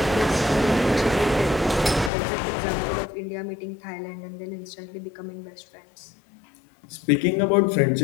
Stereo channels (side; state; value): right; drops out; at 2.1 s